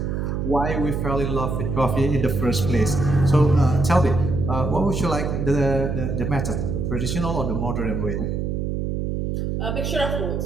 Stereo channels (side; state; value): right; noise; hum, 1 dB below the sound